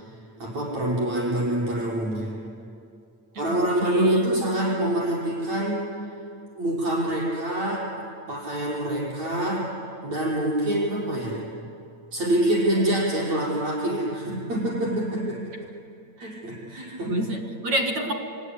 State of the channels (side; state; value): left; late; 9.0 ms